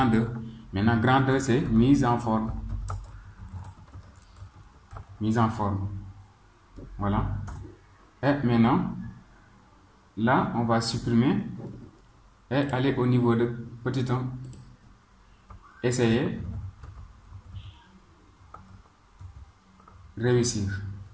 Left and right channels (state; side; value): identical; both; correlation 1.00